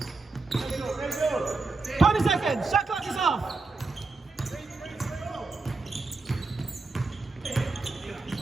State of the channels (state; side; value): quieter; left; 3.8 dB